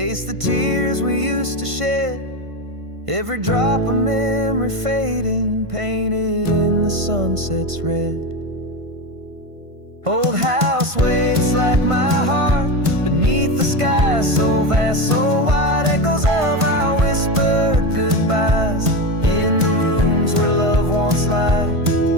the tears we used to shed. Every drop of memory fading, painted in the sunset's red. Old house waits like my heart beneath the sky so vast, so wide. Echoes of our whispered goodbyes in the rooms where love once lied.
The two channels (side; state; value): left; late; 1.5 ms